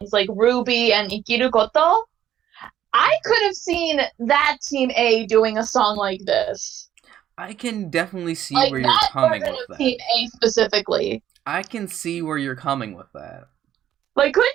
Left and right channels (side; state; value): left; quieter; 11.1 dB